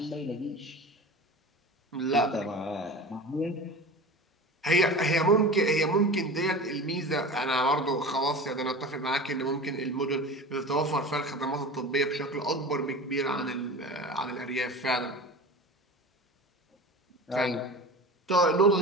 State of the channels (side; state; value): both; normal; correlation 0.33